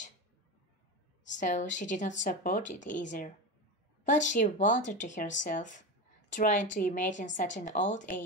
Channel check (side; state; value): both; normal; correlation 0.21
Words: so she did not support it either. But she wondered to herself, trying to imagine such an old